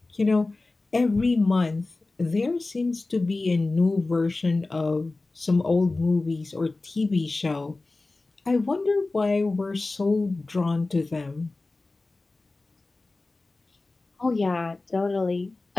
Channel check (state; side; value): quieter; right; 3.3 dB